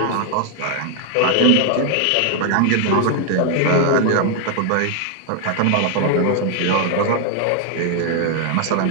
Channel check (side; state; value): both; different; correlation 0.00